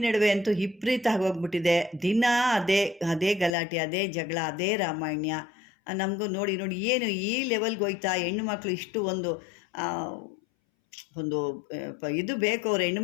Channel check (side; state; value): right; drops out; at 3.6 s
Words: ನಡುವೆ ಅಂತೂ ವಿಪರೀತ ಆಗೋಗ್ಬಿಟ್ಟಿದೆ. ದಿನ ಅದೇ ಗಲಾಟೆ, ಅದೇ ಜಗಳ, ಅದೇ ರಾಮಾಯಣ. ನಮಗೂ ನೋಡಿ ಏನು ಈ ಲೆವೆಲ್ಗೆ ಹೋಯ್ತಾ ಹೆಣ್ಣುಮಕ್ಳು ಇಷ್ಟು ಒಂದು ಇದು ಬೇಕು, ಅವ್ರು